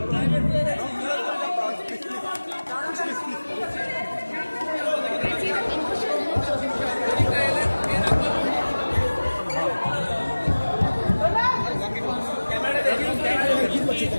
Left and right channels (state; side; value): inverted; both; correlation -1.00